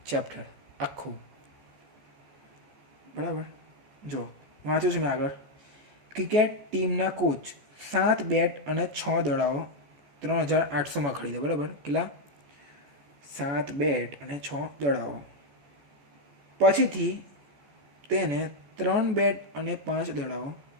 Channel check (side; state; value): left; late; 14 ms